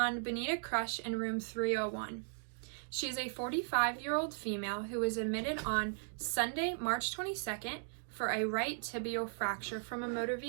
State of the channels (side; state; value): left; silent; digital silence